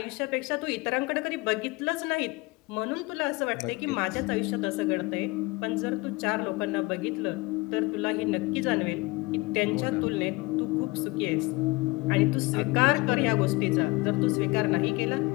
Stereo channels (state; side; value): quieter; right; 24.2 dB